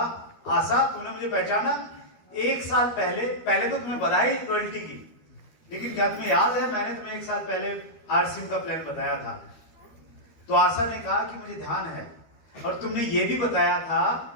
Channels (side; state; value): right; late; 12 ms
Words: आशा तूने मुझे पहचाना? 1 साल पहले तो तुम्हें बधाई रॉयल्टी की, लेकिन क्या तुम्हें याद है मैंने तुम्हें 1 साल पहले आरसीएम का प्लान बताया था? तो आशा ने कहा कि मुझे ध्यान है, और तुमने ये भी बताया था